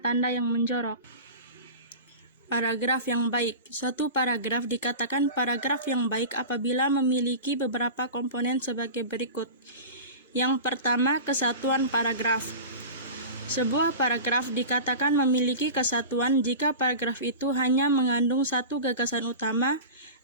tanda yang menjorok. Paragraf yang baik. Suatu paragraf dikatakan paragraf yang baik apabila memiliki beberapa komponen sebagai berikut. Yang pertama, kesatuan paragraf. Sebuah paragraf dikatakan memiliki kesatuan jika paragraf itu hanya mengandung satu gagasan utama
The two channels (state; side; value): inverted; both; correlation -0.31